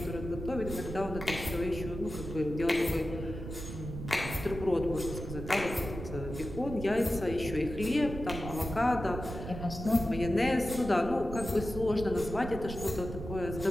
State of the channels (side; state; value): right; noise; rumble, 8 dB below the sound